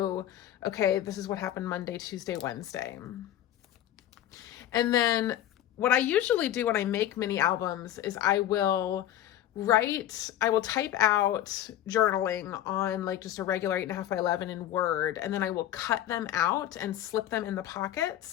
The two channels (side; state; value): right; quieter; 12.3 dB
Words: okay, this is what happened Monday, Tuesday, Wednesday. And then what I usually do when I make mini albums is I will type out journaling on like just a regular 8.5 by 11 in Word, and then I will cut them out and slip them in the